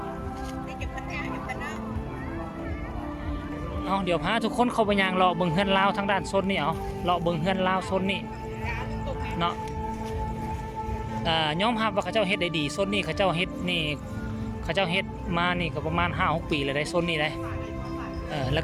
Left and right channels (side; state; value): both; identical; correlation 1.00